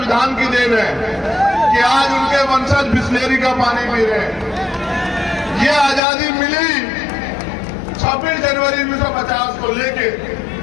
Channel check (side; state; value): right; drops out; at 6.0 s